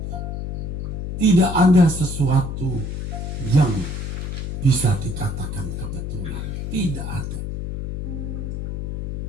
Tidak ada sesuatu yang bisa dikatakan kebetulan. Tidak ada.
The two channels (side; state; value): left; noise; hum, 4 dB below the sound